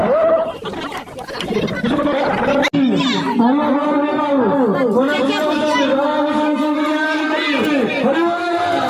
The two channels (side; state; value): both; identical; correlation 1.00